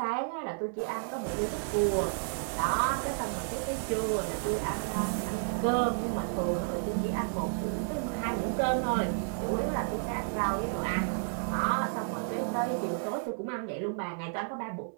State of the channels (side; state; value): left; silent; digital silence